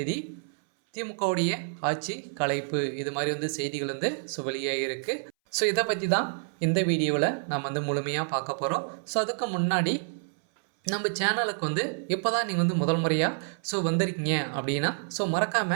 திமுகவுடைய ஆட்சி கலைப்பு. இது மாதிரி செய்திகள் வெளியாகி இருக்கு. ஸோ இதை பற்றி தான் இந்த வீடியோவில் நாம் முழுமையாக பார்க்க போகிறோம். ஸோ அதுக்கு முன்னாடி நம்ம சேனலுக்கு இப்போ தான் நீங்கள் முதல் முறையாக வந்திருக்கீங்க அப்படின்னா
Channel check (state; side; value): silent; left; 59 dB below the other